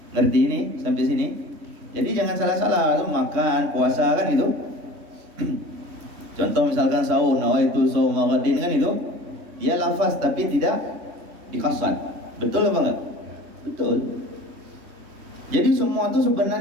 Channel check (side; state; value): left; late; 3.5 ms